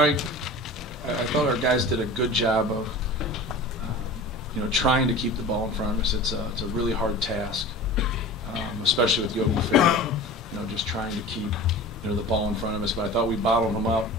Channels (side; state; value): both; normal; correlation 0.36